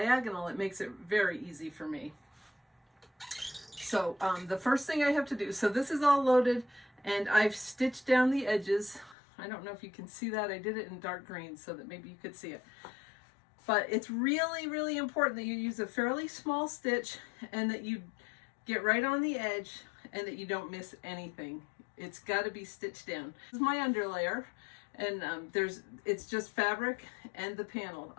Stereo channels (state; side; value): drops out; right; at 9.2 s